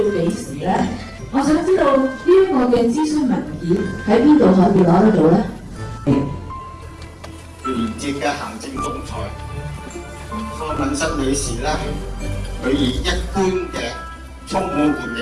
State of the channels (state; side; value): identical; both; correlation 1.00